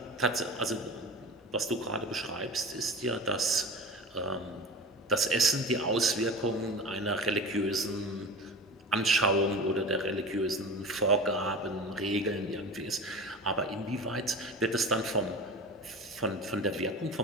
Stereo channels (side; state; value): both; normal; correlation 0.33